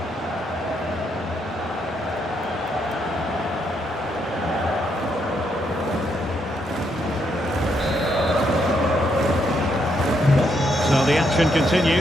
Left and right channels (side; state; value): both; normal; correlation 0.76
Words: So the action